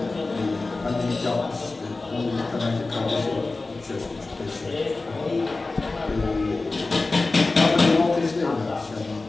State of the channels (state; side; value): quieter; right; 3.5 dB